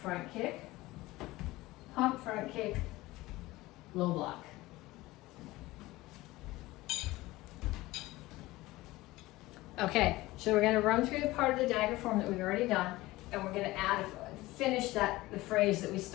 Front kick, pump front kick, low block. Okay, so we're going to run through the part of the dagger form that we've already done, and we're going to add finish the phrase that we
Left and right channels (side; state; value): right; quieter; 18.9 dB